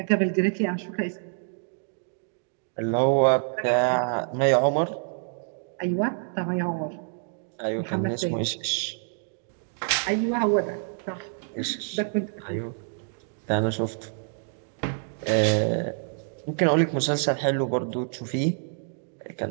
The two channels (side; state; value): left; silent; digital silence